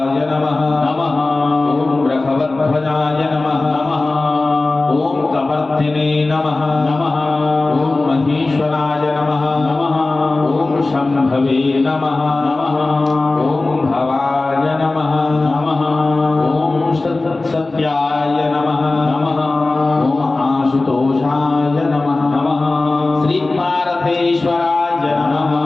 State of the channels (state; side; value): quieter; right; 3.2 dB